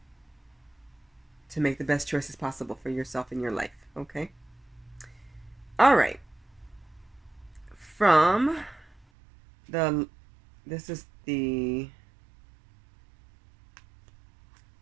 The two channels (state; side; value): drops out; left; at 9.1 s